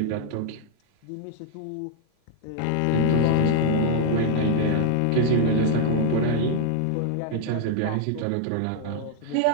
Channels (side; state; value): both; different; correlation 0.00